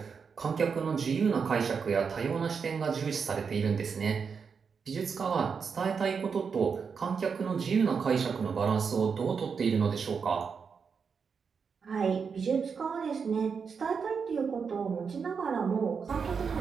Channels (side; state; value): left; quieter; 5.9 dB